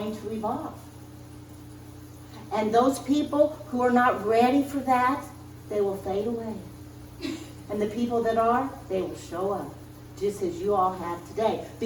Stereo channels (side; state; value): both; identical; correlation 1.00